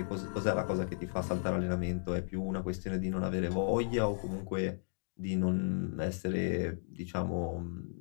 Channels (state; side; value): silent; right; digital silence